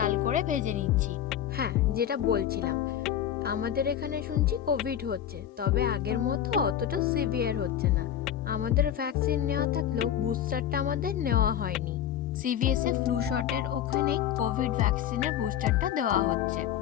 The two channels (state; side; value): quieter; right; 10.2 dB